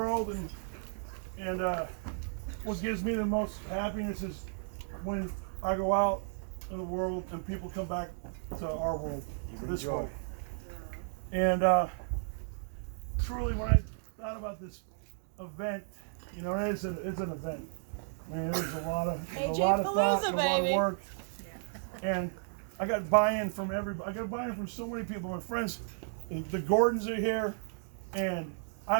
And what gives me the most happiness is when I go out in the world and people come back to our world, to this world. And truly, when I thought about this event, you know, it's an event. I mean, there's a lot of thought, and a lot of work, and I got buy-in from everybody. I got buy-in from so many people. My friends, the Gordons are here, and I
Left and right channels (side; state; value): left; silent; digital silence